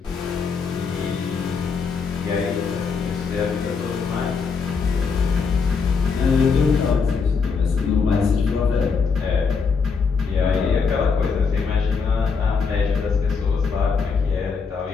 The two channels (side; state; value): right; quieter; 5.3 dB